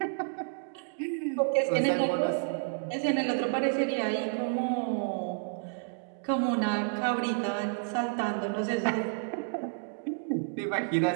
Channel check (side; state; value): left; silent; digital silence